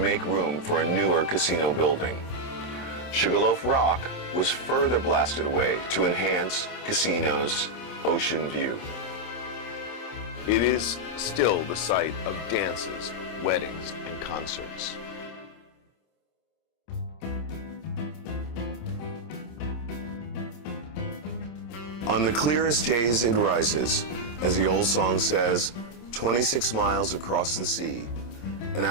room for a newer casino building. Sugarloaf Rock was further blasted away to enhance casino's ocean view. It is still the site of dances, weddings, and concerts. On the clearest days it rises, as the old song says, 26 miles across the sea, an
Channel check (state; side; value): late; right; 26 ms